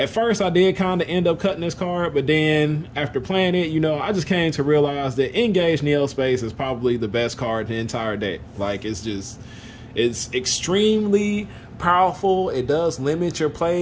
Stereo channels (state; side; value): identical; both; correlation 1.00